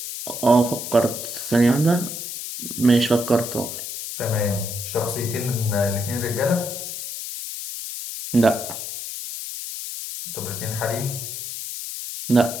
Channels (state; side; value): noise; left; hiss, 7 dB below the sound